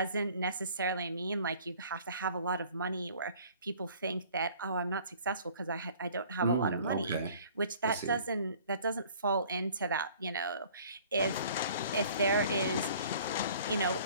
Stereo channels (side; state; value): both; inverted; correlation -0.52